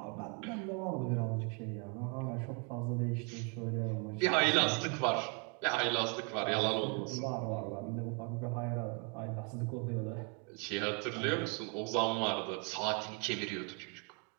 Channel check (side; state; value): left; quieter; 34.4 dB